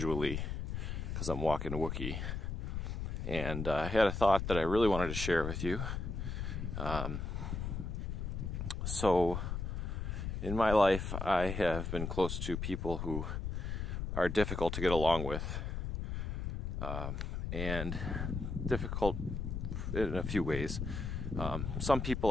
because I'm walking a Wookiee. And I had a thought that I really wanted to share with you. So, in my life, I have been close to people who are difficult to get along with. And difficult in a few ways. Some people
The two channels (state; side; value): noise; left; rumble, 3 dB below the sound